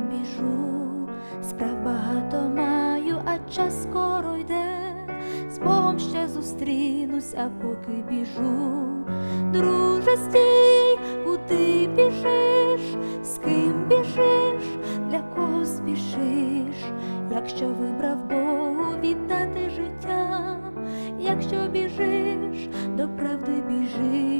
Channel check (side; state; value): both; inverted; correlation -1.00